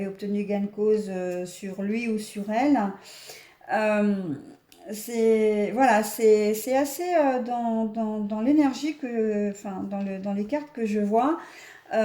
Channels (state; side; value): identical; both; correlation 1.00